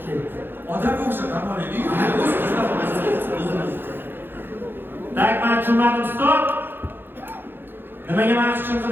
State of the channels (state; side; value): late; left; 0.10 ms